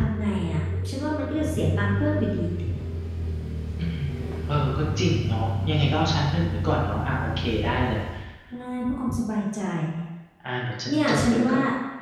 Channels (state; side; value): identical; both; correlation 1.00